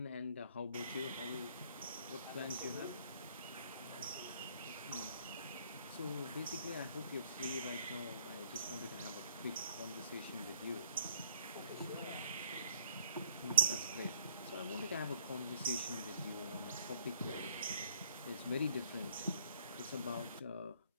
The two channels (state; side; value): inverted; both; correlation -0.62